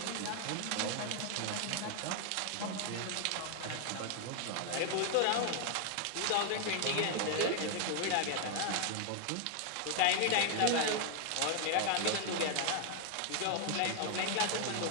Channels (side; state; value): both; different; correlation 0.00